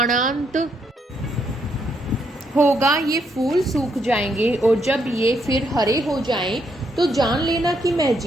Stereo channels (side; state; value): both; normal; correlation 0.75